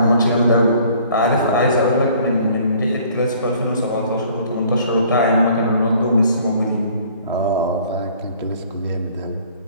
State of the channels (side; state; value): both; inverted; correlation -0.55